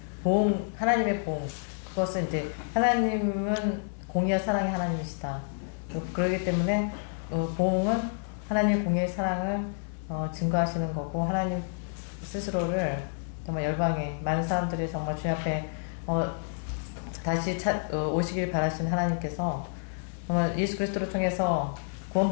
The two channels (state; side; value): silent; right; 58 dB below the other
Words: 하나님의 보응, 그것은 이제 하나님은 공의와 사랑의 하나님이시다. 그러기 때문에 보응은 하나님의 공의의 사랑을 증거하시는 거고, 하나님 스스로를 정말 열방에 많은 사람들이 정말 주님 앞에 다시 오시길 바라시는 하나님께서 정말 예수 그리스도를 통해서